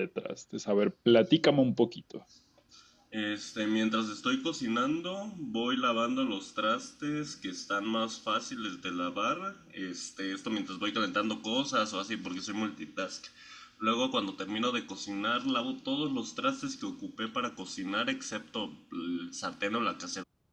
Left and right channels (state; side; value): identical; both; correlation 1.00